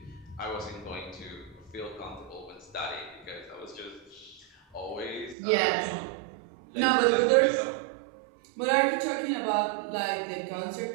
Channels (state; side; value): drops out; left; at 5.4 s